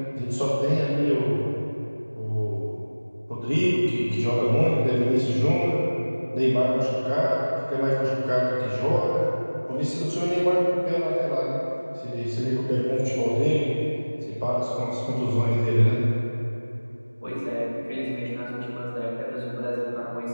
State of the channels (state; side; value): inverted; both; correlation -1.00